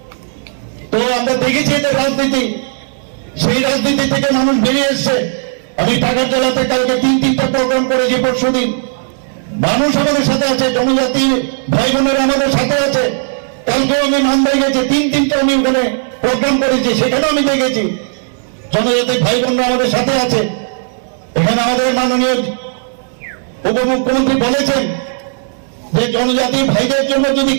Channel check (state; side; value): silent; left; digital silence